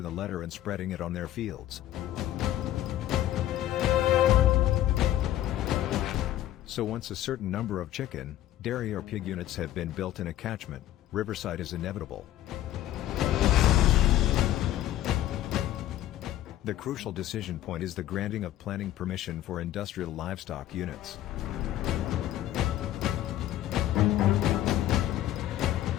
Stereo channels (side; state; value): right; quieter; 13.3 dB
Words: the letter and spreading it on their fields. So once a certain number of chicken, dairy or pig units have been built in a catchment, Rivercide is inevitable. The crucial decision point is the granting of planning permission for industrial livestock units.